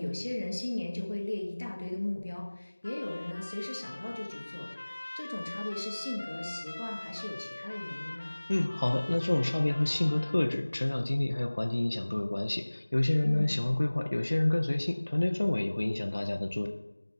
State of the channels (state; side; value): inverted; both; correlation -1.00